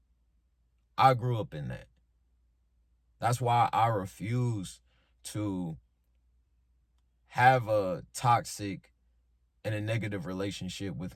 I grew up in that. That's why I refuse to have a toxic and a negative relationship with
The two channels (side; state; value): both; identical; correlation 1.00